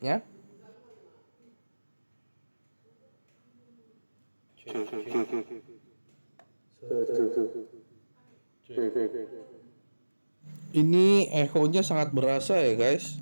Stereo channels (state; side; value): inverted; both; correlation -1.00